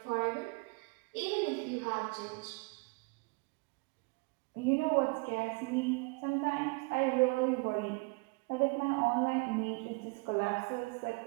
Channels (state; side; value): quieter; left; 30.3 dB